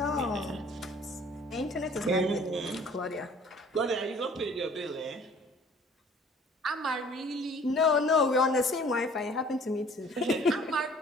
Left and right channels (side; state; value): both; normal; correlation 0.53